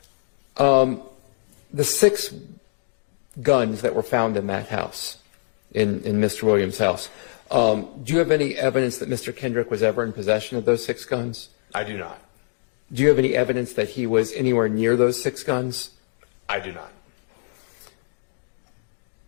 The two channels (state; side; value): silent; right; 60 dB below the other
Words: The 6 guns that were found in that house, in Mr. Williams' house, do you have any evidence that Mr. Kendrick was ever in possession of those 6 guns? I do not. Do you have any evidence that he was anywhere near those 6 guns? I do not.